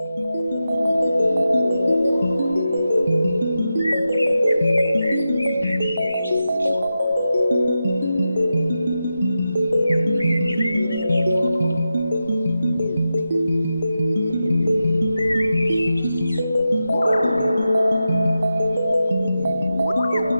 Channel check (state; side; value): inverted; both; correlation -0.90